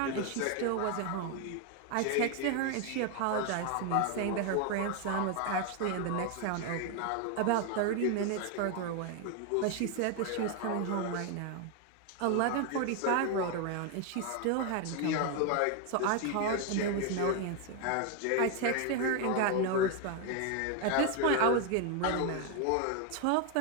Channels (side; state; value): both; different; correlation 0.01